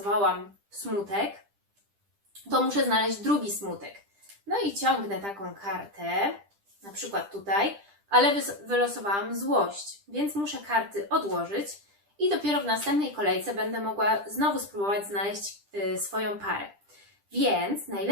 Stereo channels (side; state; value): left; late; 10 ms